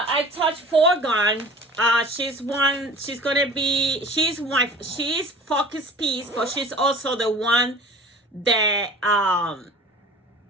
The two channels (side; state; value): both; normal; correlation 0.43